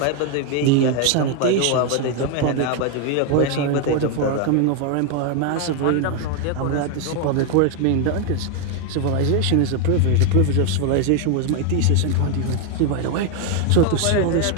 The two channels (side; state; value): both; different; correlation 0.01